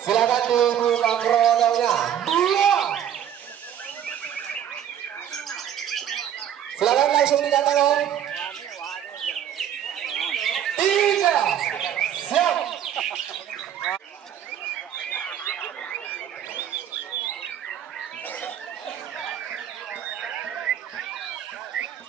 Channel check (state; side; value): quieter; left; 9.9 dB